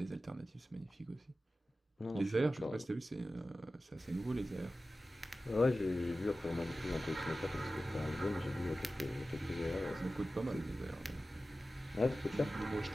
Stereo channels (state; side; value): normal; both; correlation 0.95